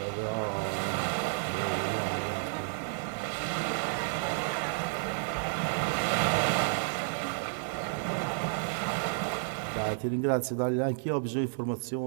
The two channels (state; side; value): silent; left; digital silence